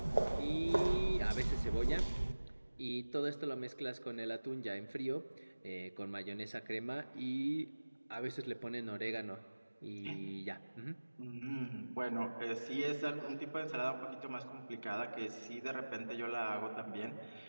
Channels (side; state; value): both; inverted; correlation -1.00